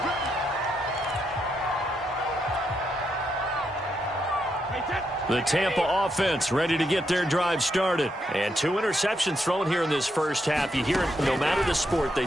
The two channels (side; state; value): both; normal; correlation 0.80